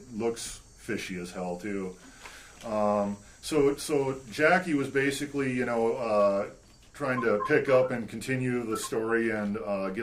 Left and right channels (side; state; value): both; identical; correlation 1.00